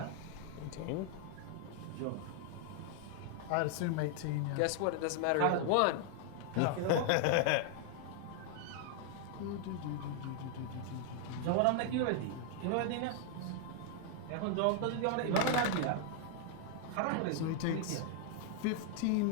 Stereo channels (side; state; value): both; different; correlation 0.00